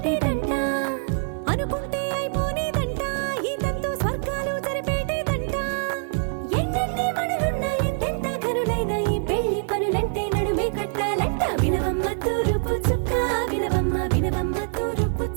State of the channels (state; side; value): silent; left; 62 dB below the other